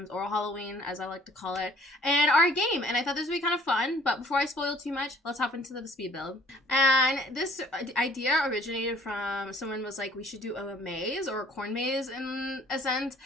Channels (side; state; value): both; normal; correlation 0.55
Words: or Halloween, as I like to call it, and our game. And I thought this would be kind of fun, but before I spoil too much, let's hop into the speed build. And this idea originated from someone was like, we should do a maze or a corn maze in a sense.